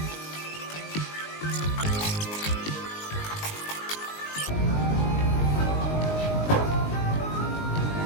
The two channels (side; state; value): right; late; 19 ms